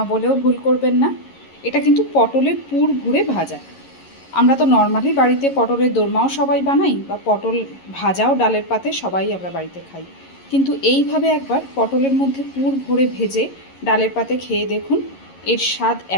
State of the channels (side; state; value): right; late; 11 ms